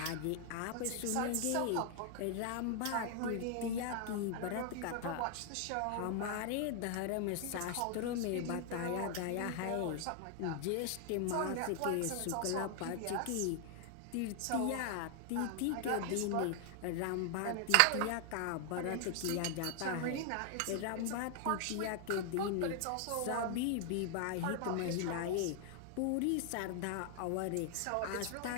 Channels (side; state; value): both; different; correlation 0.00